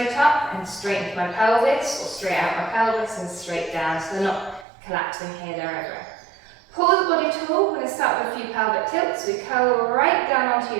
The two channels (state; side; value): drops out; left; at 4.7 s